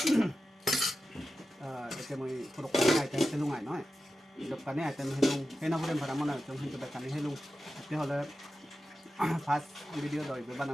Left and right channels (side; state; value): both; normal; correlation 0.92